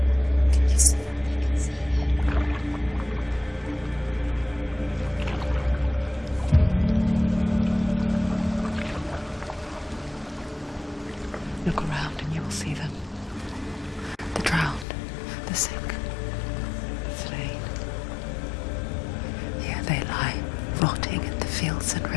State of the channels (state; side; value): drops out; right; at 14.9 s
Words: Can you see them? I can see Look around and you will see them. The drowned, the sick, the slain. Here they lie, rotting in the fields and